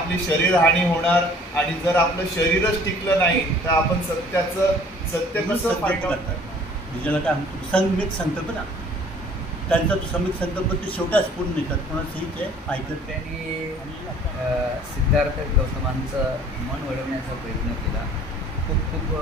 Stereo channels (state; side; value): normal; both; correlation 0.53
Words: शरीर हानी होणार आणि जर आपलं शरीरच टिकलं नाही तर आपण सत्य कसं फाईंड आउट करणार. ज्याला काय म्हणतो संमित संकल्प ना, त्यांचा तो संमित संकल्प ते शेवटाच पूर्ण निघतात, कोणाचंही ते ऐकत. त्यांनी सिद्धार्थ गौतमांचं मन वळवण्याचा प्रयत्न केला. खूप खूप